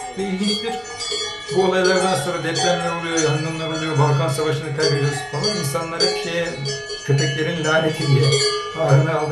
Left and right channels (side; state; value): both; identical; correlation 1.00